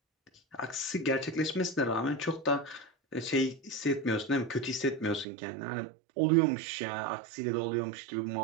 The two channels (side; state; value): left; drops out; at 5.2 s